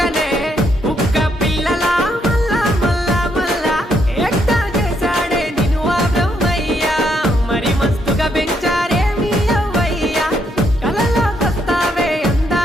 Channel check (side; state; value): both; normal; correlation 0.75